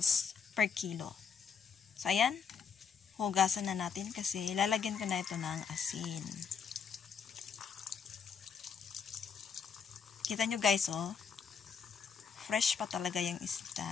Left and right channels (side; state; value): right; quieter; 6.4 dB